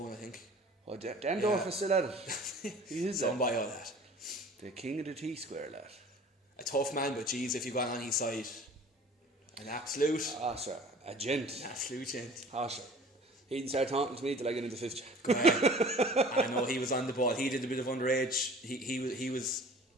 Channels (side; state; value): both; normal; correlation 0.46